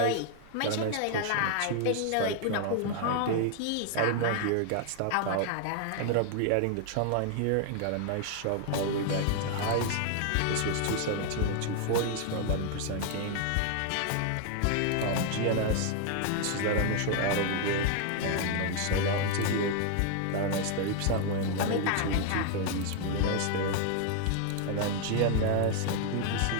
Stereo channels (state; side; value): different; both; correlation 0.00